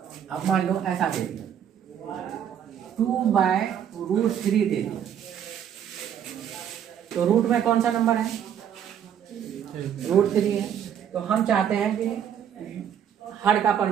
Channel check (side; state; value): left; quieter; 9.2 dB